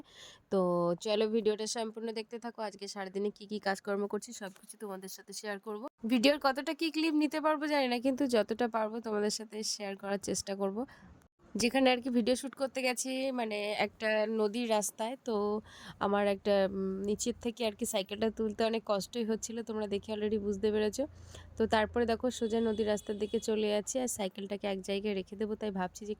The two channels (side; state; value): both; identical; correlation 1.00